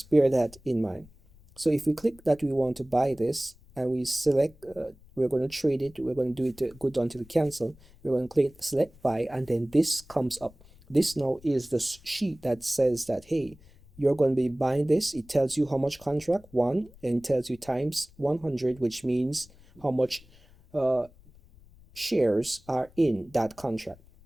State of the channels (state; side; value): noise; left; rumble, 25 dB below the sound